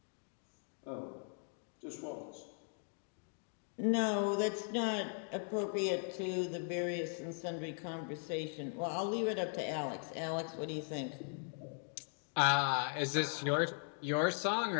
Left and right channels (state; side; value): silent; right; 52 dB below the other